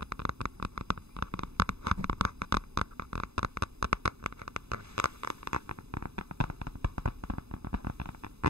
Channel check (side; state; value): left; late; 0.79 ms